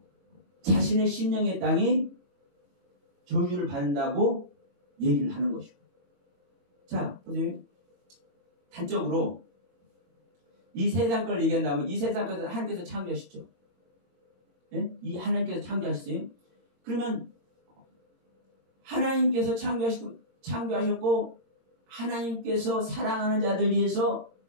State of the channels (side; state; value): left; late; 18 ms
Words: 자신의 심령의 땅이 저주를 받는다고 얘기를 하는 것이고. 자, 보세요. 단적으로 이 세상 걸 얘기한다면 이 세상 것은 하나님께서 창조하셨죠. 예? 이 하나님께서 창조하셨어요. 그러면 하나님께서 창조하셨고 하나님께서 사랑하는 자들 위해서